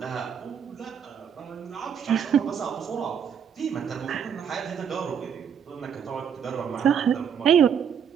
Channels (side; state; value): left; quieter; 7.8 dB